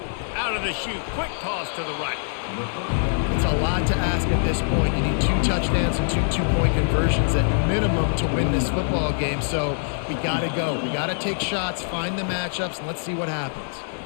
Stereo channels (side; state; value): right; silent; digital silence